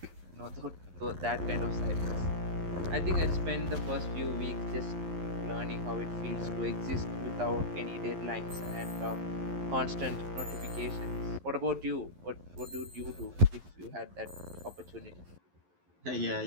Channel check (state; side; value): late; left; 11 ms